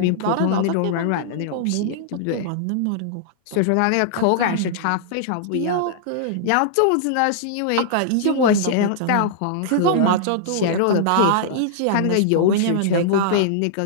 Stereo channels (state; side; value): different; both; correlation -0.02